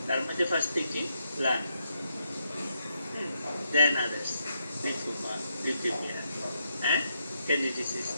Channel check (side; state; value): both; inverted; correlation -0.81